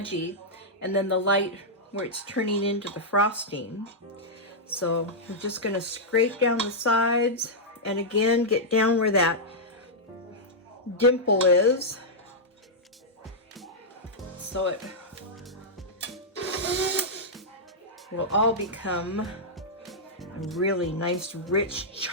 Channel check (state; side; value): normal; both; correlation -0.08